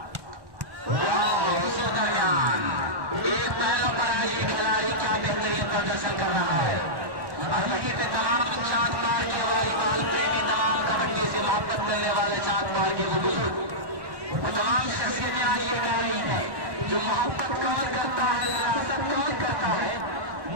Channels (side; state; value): left; late; 1.1 ms